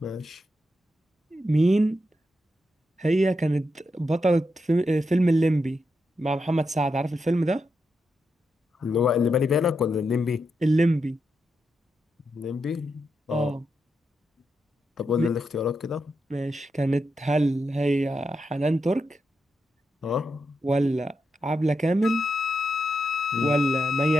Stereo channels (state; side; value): normal; both; correlation 0.85